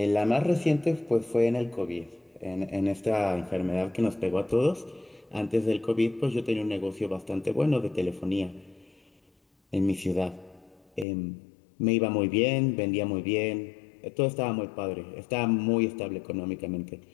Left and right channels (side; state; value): right; drops out; at 11.1 s